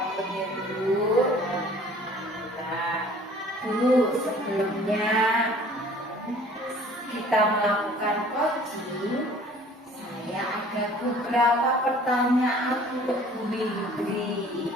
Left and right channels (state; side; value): normal; both; correlation 0.51